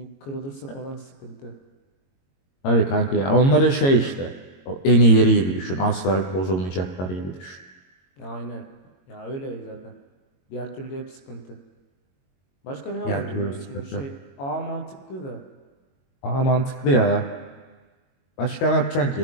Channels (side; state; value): right; late; 22 ms